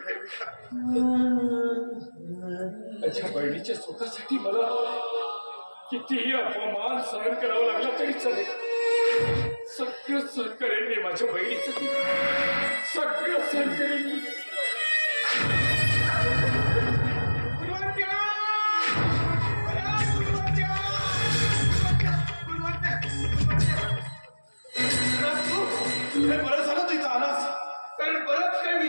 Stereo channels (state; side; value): inverted; both; correlation -1.00